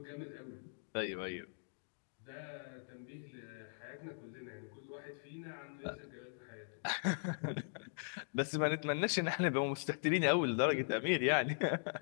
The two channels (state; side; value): silent; right; digital silence